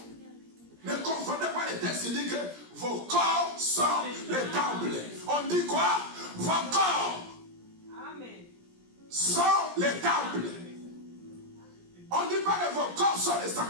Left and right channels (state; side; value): late; left; 17 ms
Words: Ne confondez pas les textes qui disent que vos corps sont les temples. On dit quoi? Vos corps sont les temples. On ne dit pas que vos corps sont les